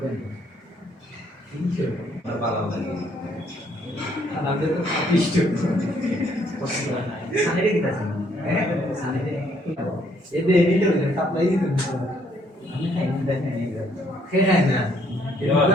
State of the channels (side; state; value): both; normal; correlation 0.67